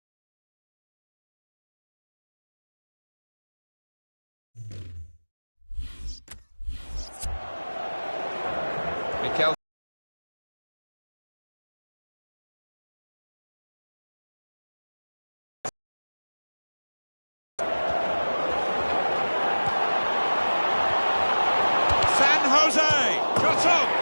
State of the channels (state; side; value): inverted; both; correlation -1.00